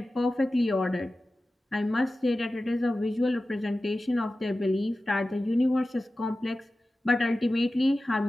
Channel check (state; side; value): normal; both; correlation 0.95